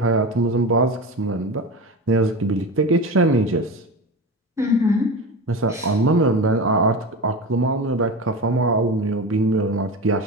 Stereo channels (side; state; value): both; normal; correlation 0.26